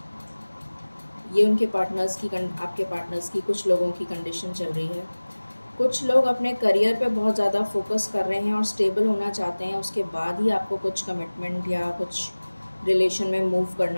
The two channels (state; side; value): inverted; both; correlation -1.00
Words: ये उनके पार्टनर्स की आपके पार्टनर्स की कुछ लोगों की कंडीशन चल रही है। कुछ लोग अपने करियर पे बहुत ज़्यादा फोकस कर रहे हैं और स्टेबल होना चाहते हैं, उसके बाद ही आपको कुछ कमिटमेंट या कुछ रिलेशन में मूव